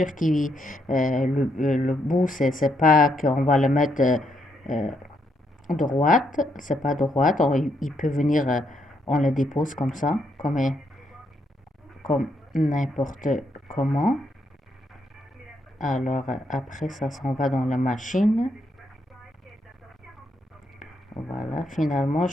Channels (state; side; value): normal; both; correlation 0.76